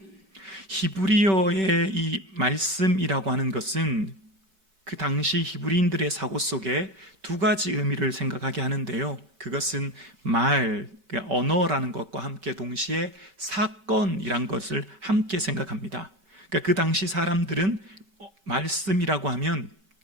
히브리어의 이 말씀이라고 하는 것은 그 당시 히브리인들의 사고 속에 두 가지 의미를 생각하게 하는데요. 그것은 언어라는 것과 함께 동시에 사건이란 것을 함께 생각합니다. 그러니까 그 당시 사람들은 말씀이라고 하면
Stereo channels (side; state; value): left; late; 5.2 ms